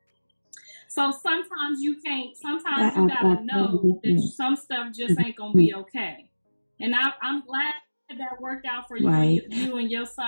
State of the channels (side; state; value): both; inverted; correlation -1.00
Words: So sometimes you gotta know that some stuff just ain't gonna be okay. And I'm glad that worked out for you, right. you and your